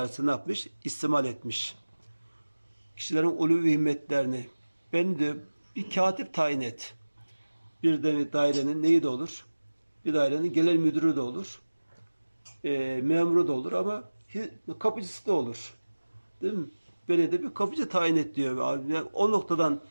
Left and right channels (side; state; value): both; inverted; correlation -1.00